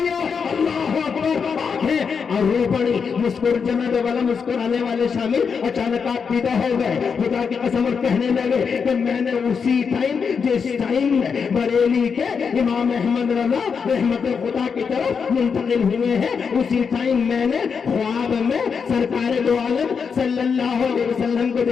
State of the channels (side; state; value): right; quieter; 6.0 dB